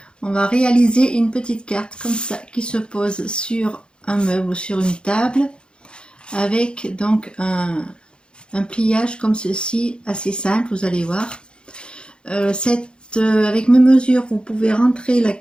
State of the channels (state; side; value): late; right; 0.053 ms